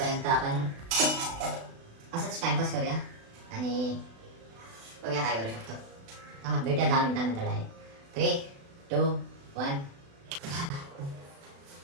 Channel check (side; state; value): left; late; 36 ms